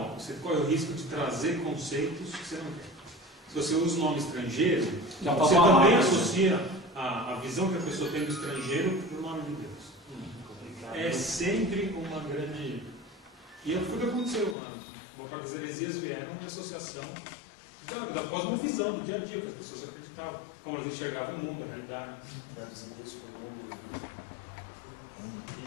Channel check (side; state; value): right; drops out; at 14.6 s